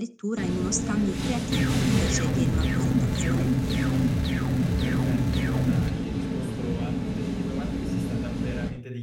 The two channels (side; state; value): both; identical; correlation 1.00